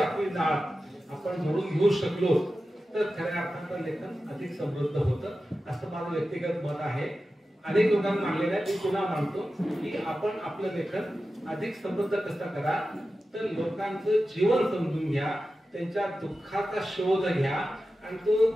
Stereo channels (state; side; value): normal; both; correlation 0.93